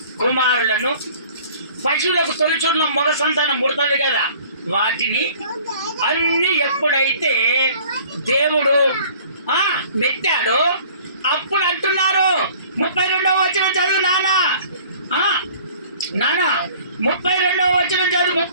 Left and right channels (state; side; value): inverted; both; correlation -0.51